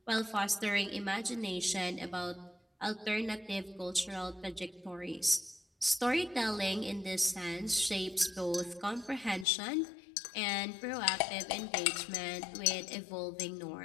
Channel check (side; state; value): right; drops out; at 9.5 s